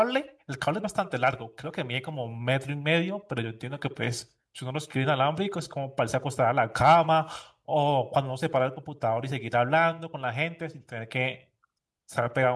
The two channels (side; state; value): both; identical; correlation 1.00